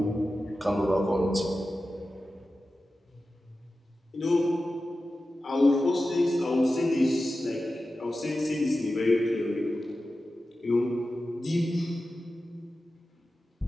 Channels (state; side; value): normal; both; correlation 0.93